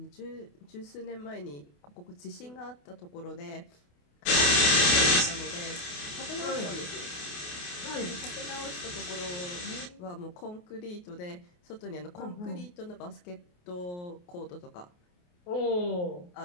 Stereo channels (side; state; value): right; late; 28 ms